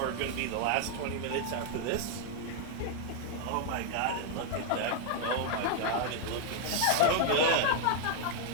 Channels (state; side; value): different; both; correlation 0.00